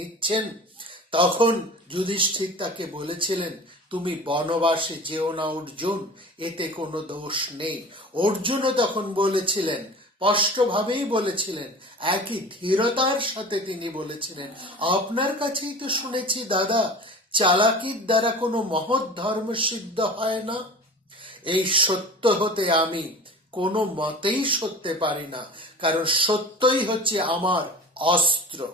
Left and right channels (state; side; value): normal; both; correlation 0.39